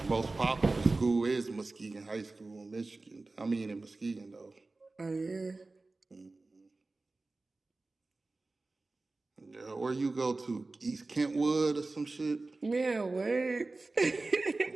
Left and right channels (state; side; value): quieter; left; 3.4 dB